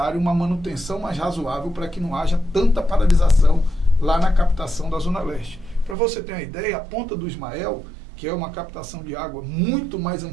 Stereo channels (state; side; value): drops out; left; at 6.0 s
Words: uma manutenção mais razoável para que não haja tanta paralisação lá na captação da Zona Leste. Para você ter uma ideia, a Ponta do Ismael, que é uma captação de água muito mais